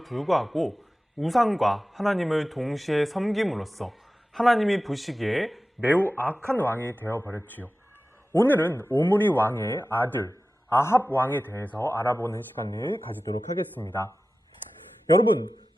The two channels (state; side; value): normal; both; correlation 0.95